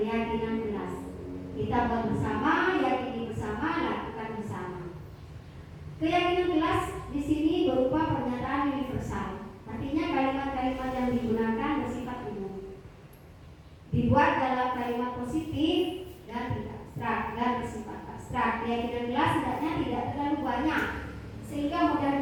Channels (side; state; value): both; identical; correlation 1.00